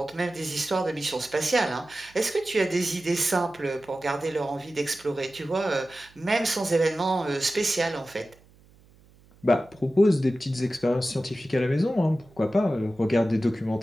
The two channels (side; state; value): right; noise; hum, 28 dB below the sound